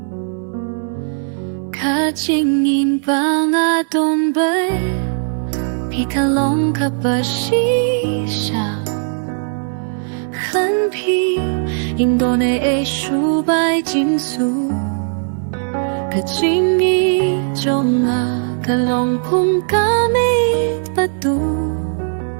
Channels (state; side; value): silent; left; 65 dB below the other